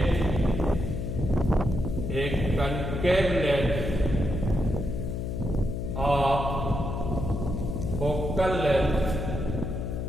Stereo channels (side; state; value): left; noise; hum, 3 dB below the sound